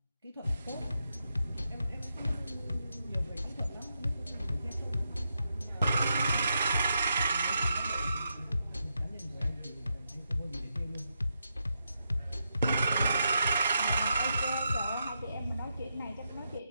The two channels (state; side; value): inverted; both; correlation -0.84